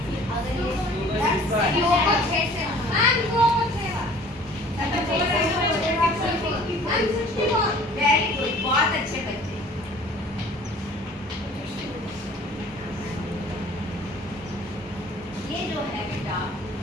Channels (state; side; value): normal; both; correlation 0.50